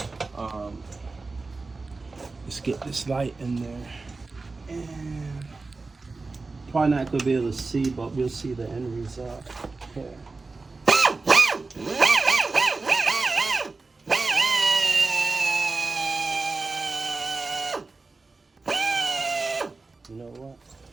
Let's get this light in there, and probably not gonna be able to see, but we'll see the end result here. You know what?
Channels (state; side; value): quieter; left; 3.8 dB